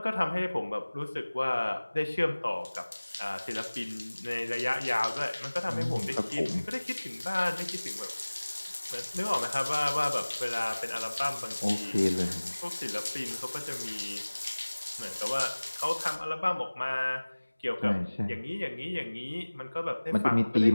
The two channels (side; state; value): both; inverted; correlation -1.00